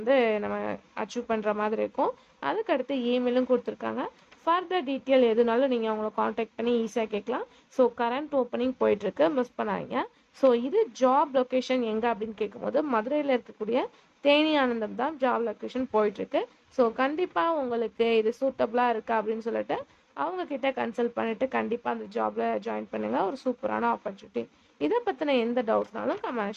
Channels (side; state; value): both; identical; correlation 1.00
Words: நம்ம அச்சீவ் பண்ணுற மாதிரி இருக்கும். அதுக்கடுத்து இமெயிலும் கொடுத்துருக்காங்க. ஃபர்தர் டீட்டெயில் எதுனாலும் நீங்கள் அவங்கள காண்டாக்ட் பண்ணி ஈஸியாக கேட்கலாம். ஸோ கரண்ட் ஓப்பனிங் போயிட்டுருக்கு, மிஸ் பண்ணாதீங்க. ஸோ இது ஜாப் லொக்கேஷன் எங்கே அப்படின்னு கேட்கும்போது மதுரையில் இருக்கக்கூடிய தேனி ஆனந்தம் தான் ஜாப் லொக்கேஷன் போயிட்டுருக்கு. ஸோ கண்டிப்பாக உங்களுக்கு இது சூட்டபுளாக இருக்கா அப்படின்னு சொல்லிட்டு அவங்கக்கிட்ட கன்சல்ட் பண்ணிவிட்டு கண்டிப்பாக அந்த ஜாபில் ஜாயின் பண்ணுங்கள். ஒரு சூப்பரான ஆப்பர்ச்சுனிட்டி. இதை பற்றின எந்த டவுட்னாலும்